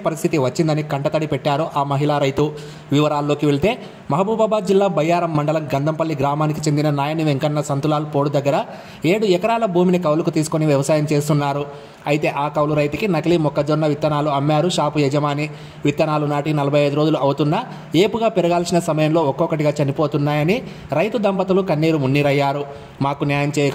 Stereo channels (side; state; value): both; identical; correlation 1.00